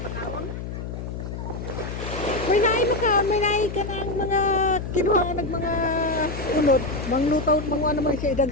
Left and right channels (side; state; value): left; noise; hum, 7 dB below the sound